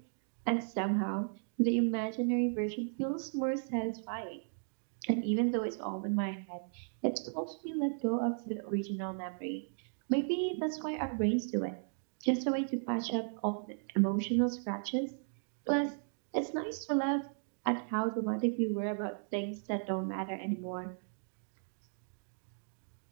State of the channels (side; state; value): left; silent; digital silence